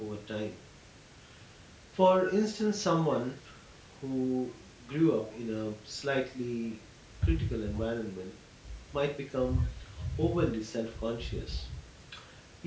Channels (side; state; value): both; identical; correlation 1.00